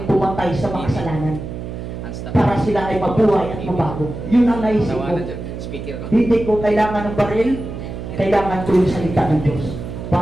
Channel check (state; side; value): noise; right; hum, 8 dB below the sound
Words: pumatay sa mga kasalanan para sila ay mabuhay at mabago. Yun ang naisip ko. Hindi ko kailangan ng baril, kailangan ko yung salita ng Diyos